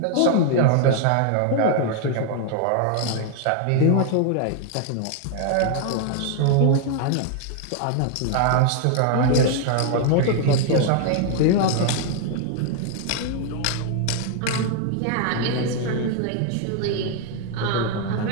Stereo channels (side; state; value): both; different; correlation 0.00